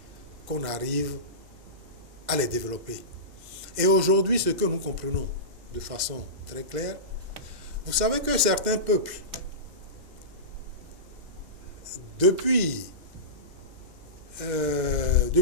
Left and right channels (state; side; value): late; left; 2.1 ms